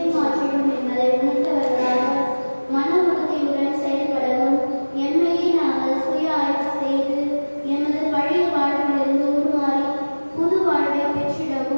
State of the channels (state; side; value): inverted; both; correlation -1.00